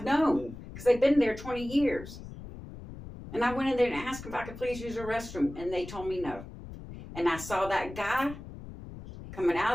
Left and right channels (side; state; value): left; noise; rumble, 13 dB below the sound